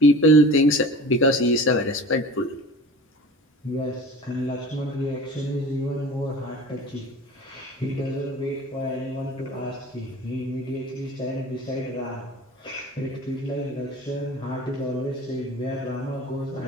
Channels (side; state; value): both; normal; correlation 0.39